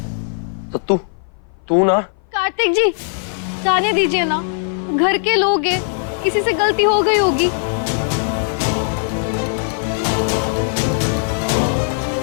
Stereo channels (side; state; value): right; silent; 57 dB below the other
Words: सत्तू, तू ना। कार्तिक जी, जाने दीजिए ना, घर के लोग हैं, किसी से गलती हो गई होगी।